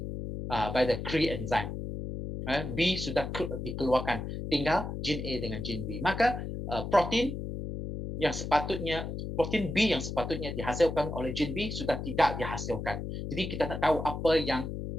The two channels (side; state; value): left; noise; hum, 6 dB below the sound